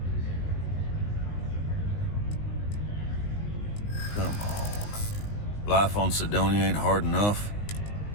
Come on. Life on Sidonia ain't hard enough.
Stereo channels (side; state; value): right; late; 19 ms